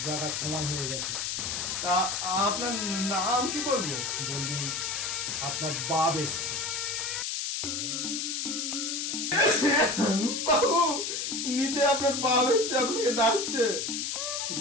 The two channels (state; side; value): noise; left; hiss, 2 dB below the sound